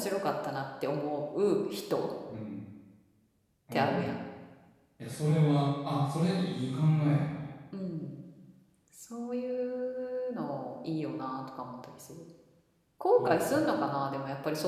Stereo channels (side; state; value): both; identical; correlation 1.00